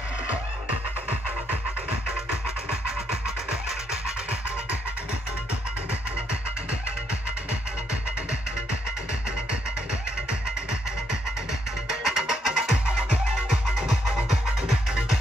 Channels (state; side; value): normal; both; correlation 0.75